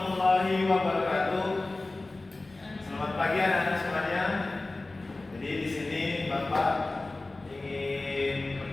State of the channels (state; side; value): quieter; right; 3.1 dB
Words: wabarakatuh. Selamat pagi anak-anak semuanya. Jadi di sini Bapak ingin